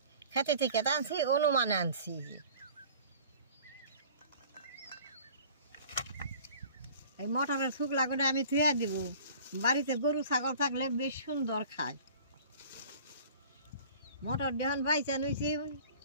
খেতে থেকে আনছি, অনুমানে আনছি। এই মটরের শুকলা করে আমি ধুয়ে দিব। বাড়িতে গরু ছাগল থাকলে বেশ সুন্দর খায়। মটর দিয়ে বাইচা নিয়েছি,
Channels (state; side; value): inverted; both; correlation -0.46